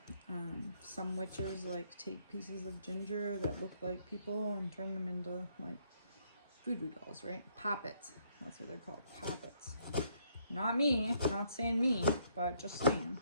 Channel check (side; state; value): both; inverted; correlation -0.69